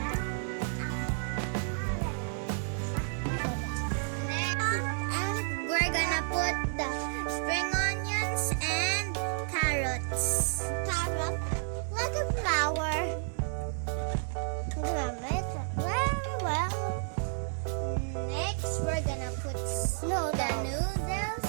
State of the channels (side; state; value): left; silent; digital silence